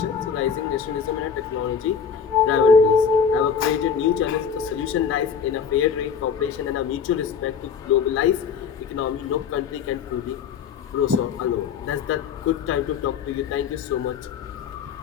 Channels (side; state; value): right; quieter; 6.7 dB